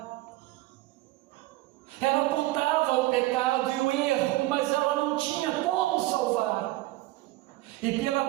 Ela apontava o pecado e o erro, mas ela não tinha como salvar. E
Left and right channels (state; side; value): quieter; left; 18.2 dB